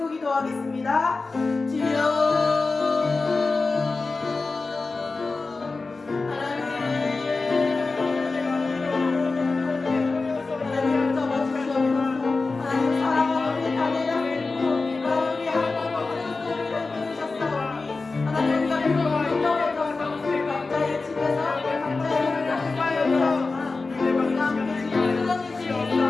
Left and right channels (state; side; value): quieter; right; 3.8 dB